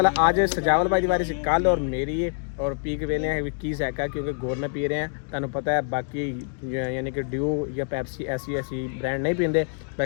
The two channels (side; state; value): right; silent; 58 dB below the other